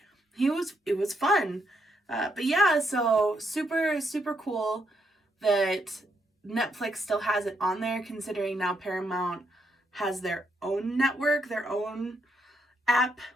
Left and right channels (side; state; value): both; normal; correlation 0.77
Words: it was fun. But yeah, so super, super cool that Netflix still has it on there, considering now Paramount has their own network, their own app